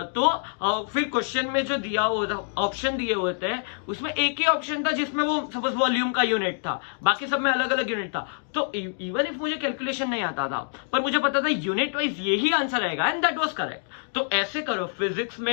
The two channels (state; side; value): silent; right; 61 dB below the other